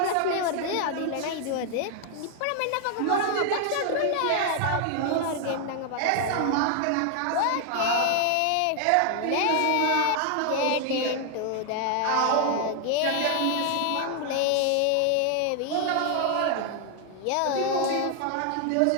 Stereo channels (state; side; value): different; both; correlation 0.00